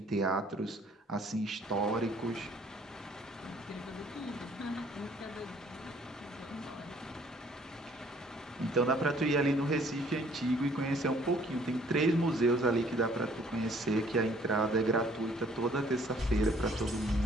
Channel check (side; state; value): both; normal; correlation 0.59